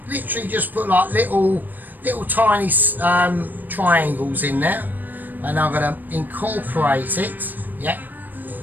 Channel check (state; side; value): late; left; 0.088 ms